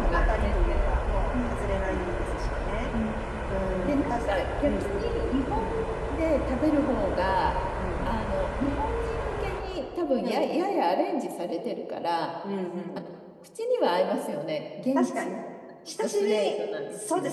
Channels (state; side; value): identical; both; correlation 1.00